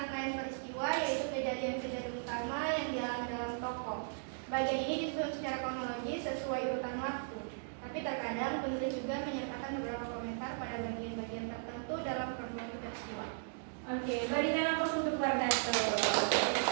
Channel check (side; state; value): left; silent; digital silence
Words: Pembagian ini disusun secara kronologis sesuai urutan waktu. Tapi terkadang penulis juga menyertakan beberapa komentar pada bagian-bagian tertentu dalam kronologi peristiwa. Oke, beri jangan pos untuk Wardato.